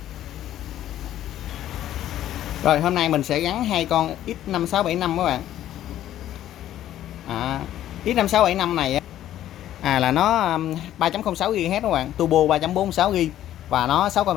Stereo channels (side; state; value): right; quieter; 12.4 dB